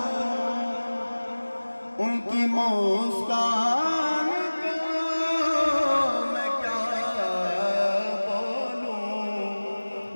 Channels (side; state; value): both; inverted; correlation -1.00